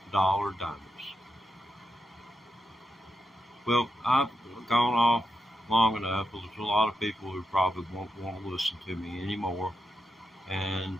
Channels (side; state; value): both; normal; correlation 0.86